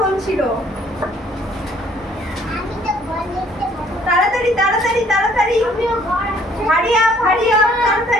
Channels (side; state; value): both; normal; correlation 0.61